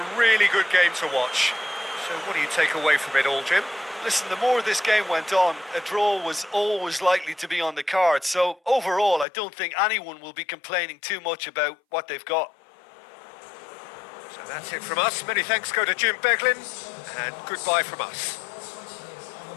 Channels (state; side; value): drops out; right; at 9.2 s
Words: really good game to watch. So what do you take away from it all, Jim? Listen, the more this game went on, a draw was always likely to be on the card. So overall, I don't think anyone will be complaining too much about what they've got. So that's it from us. Many thanks go to Jim Beglin, and goodbye from us.